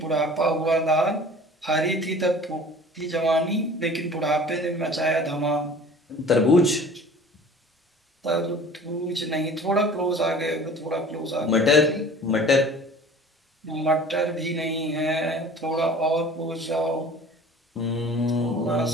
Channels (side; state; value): both; normal; correlation 0.45